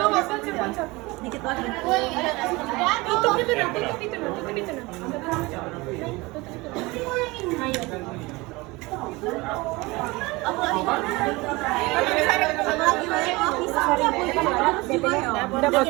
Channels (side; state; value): left; quieter; 23.0 dB